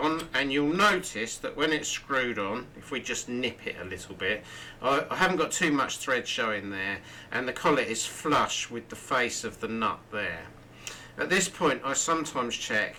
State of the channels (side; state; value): both; identical; correlation 1.00